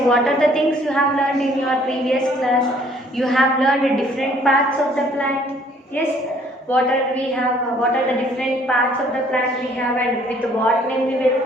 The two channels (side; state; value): both; normal; correlation 0.60